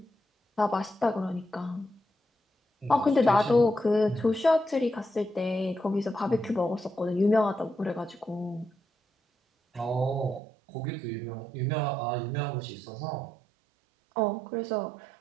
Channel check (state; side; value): drops out; left; at 10.4 s